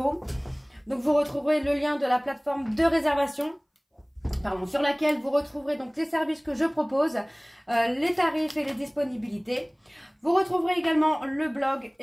Donc vous retrouverez le lien de la plateforme de réservation, sur laquelle vous retrouverez donc les services que je propose, les tarifs et les disponibilités. Vous retrouverez également le blog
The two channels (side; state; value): both; identical; correlation 1.00